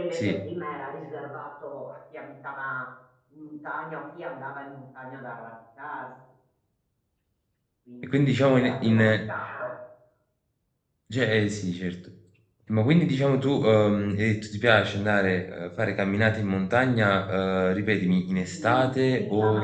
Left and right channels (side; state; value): both; identical; correlation 1.00